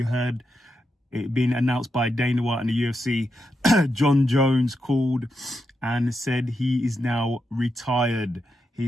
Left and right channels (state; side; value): normal; both; correlation 0.85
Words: heard it being announced by Dana White and the UFC. Jon Jones called and said he is now retired.